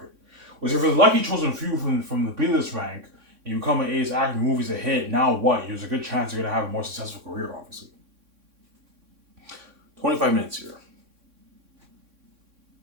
Whereas if you're the lucky chosen few from the B-list rank and you become an A-list actor, your movie's a hit, now what? There's a good chance you're gonna have a more successful career, obviously. 25 minutes here.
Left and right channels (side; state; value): left; late; 3.6 ms